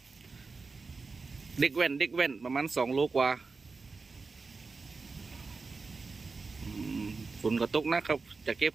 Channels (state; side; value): quieter; left; 4.2 dB